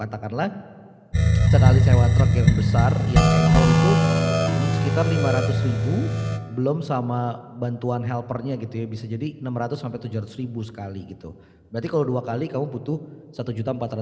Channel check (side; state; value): both; identical; correlation 1.00